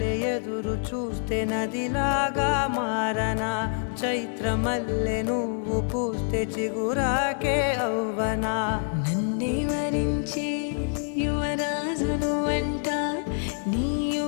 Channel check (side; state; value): right; silent; 61 dB below the other